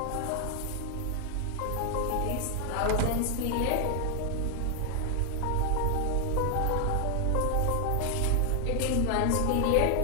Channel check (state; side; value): different; both; correlation 0.00